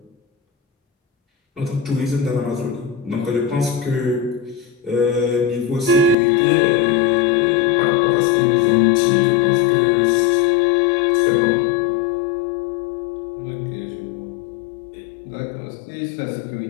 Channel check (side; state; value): right; drops out; at 6.2 s